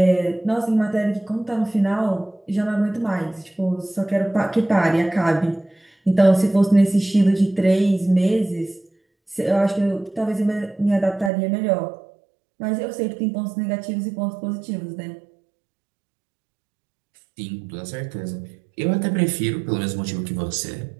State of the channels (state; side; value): drops out; left; at 11.3 s